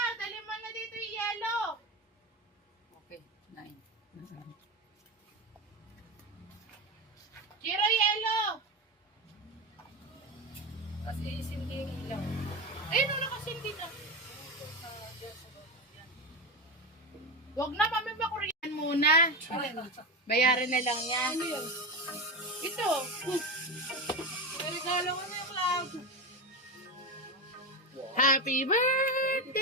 Dali mo na dito yung yellow. Okay, 9. Jiro, yellow. Kasi isindi yung ilaw. Ayun, wala kasi hindi na. Huwag na, mami, bakuriyan muna. Bayaran na lang yan. Ito. Regalo ko na yung cloud. Happy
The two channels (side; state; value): both; normal; correlation 0.18